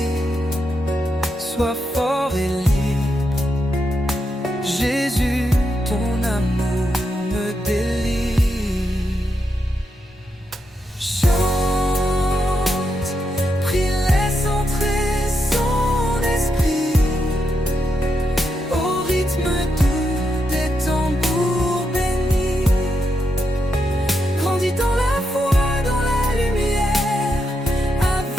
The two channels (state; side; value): normal; both; correlation 0.83